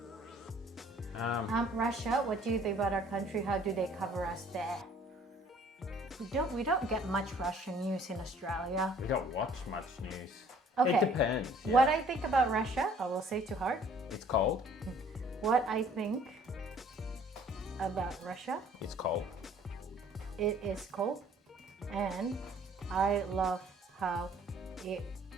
Russia, what do you think about our country? How do they cover us there? We don't get much Russian news in Australia. We don't watch much news. Okay. It depends. Yeah. What I think about Russia, I will say to heart. It's cold. What I think about Russia, It's cold. it is cold, and I love how it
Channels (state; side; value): normal; both; correlation 0.56